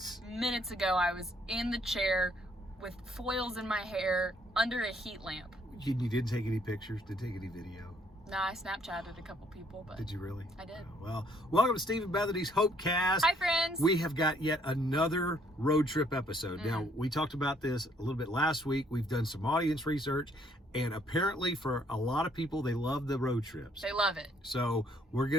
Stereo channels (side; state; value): both; normal; correlation 0.66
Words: Minutes ago, I was in the chair with foils in my hair under a heat lamp. You didn't take any pictures? Didn't take any video? No, I Snapchatted a couple people, but... Did you really? I did. Well, welcome to Steve and Bethany's Hopecast. Hi, friends. We have got yet another road trip episode. Now, we talked about this a little bit last week. We've done some audience research, and apparently for a lot of people, they love the road trips. They love it. So we're